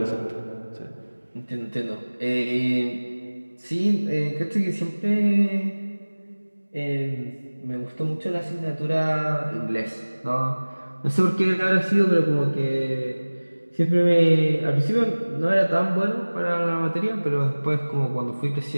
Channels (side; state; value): both; inverted; correlation -1.00